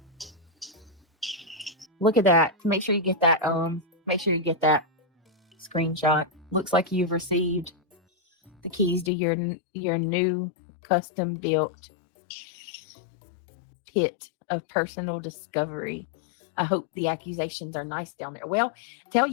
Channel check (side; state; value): right; drops out; at 9.1 s